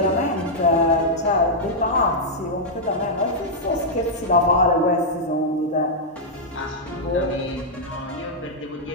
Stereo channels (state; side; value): normal; both; correlation -0.06